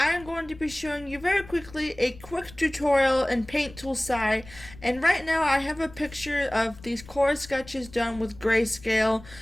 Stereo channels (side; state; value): left; noise; rumble, 19 dB below the sound